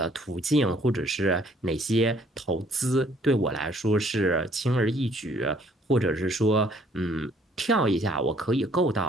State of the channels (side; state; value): both; normal; correlation 0.62